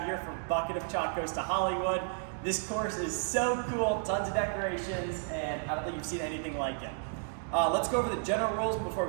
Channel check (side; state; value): left; silent; 56 dB below the other